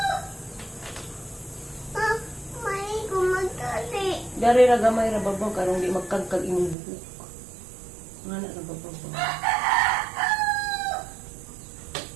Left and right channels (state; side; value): drops out; left; at 6.8 s